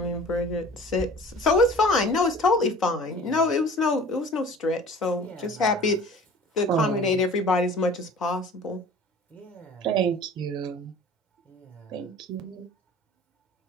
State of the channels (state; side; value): normal; both; correlation 0.45